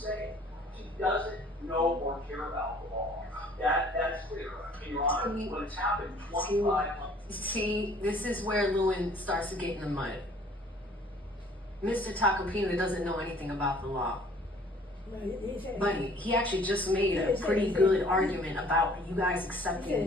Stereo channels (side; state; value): both; normal; correlation 0.55